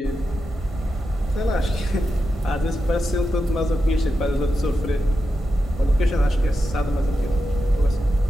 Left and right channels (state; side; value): normal; both; correlation 0.89